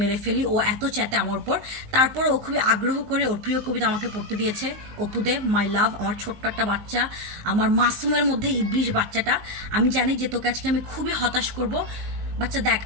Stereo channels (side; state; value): left; late; 19 ms